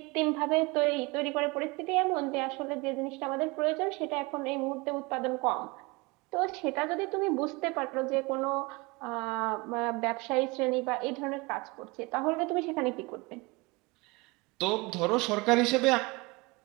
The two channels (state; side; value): quieter; left; 25.6 dB